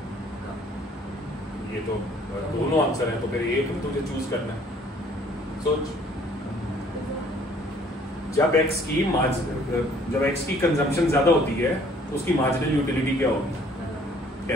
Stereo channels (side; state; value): both; normal; correlation 0.58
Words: ये तो दोनों आंसर है, तो फिर एक तुझे चूज करना है। सोच, जब एक्स की कंजम्पशन ज्यादा होती है तो उसकी मार्जिनल यूटिलिटी क्या होगी?